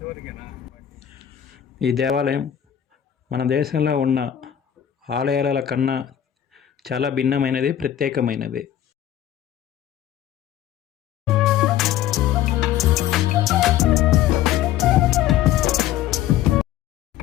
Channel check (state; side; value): quieter; right; 11.1 dB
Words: ఈ దేవాలయం మన దేశంలో ఉన్న ఆలయాల కన్నా చాలా భిన్నమైనది, ప్రత్యేకమైనది.